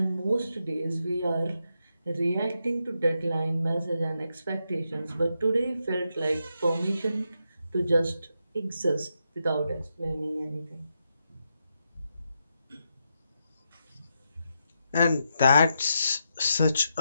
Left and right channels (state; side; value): inverted; both; correlation -0.83